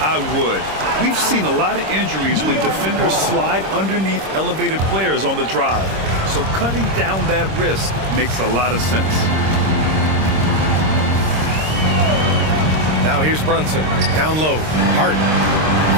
would. We've seen a lot of injuries when defenders slide underneath elevated players on the drive. So cutting down that risk makes a lot of sense. Now here's Brunson. Down low. Hart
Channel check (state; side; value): late; left; 26 ms